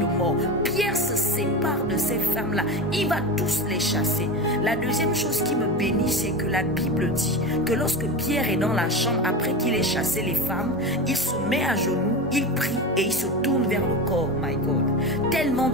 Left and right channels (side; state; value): both; normal; correlation 0.24